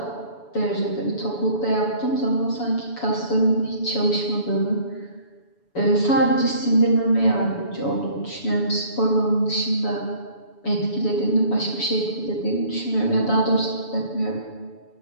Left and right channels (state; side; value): late; right; 7.1 ms